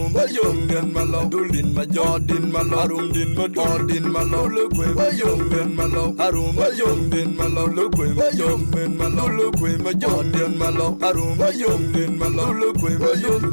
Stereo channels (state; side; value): inverted; both; correlation -1.00